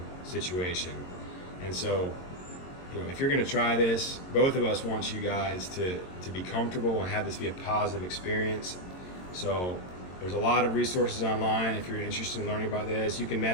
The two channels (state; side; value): late; right; 22 ms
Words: situation. And so, you know, if you're going to try this, both of us want you guys to be comfortable and have this be a positive experience. So there's a lot of resources online. If you're interested in learning about this, you can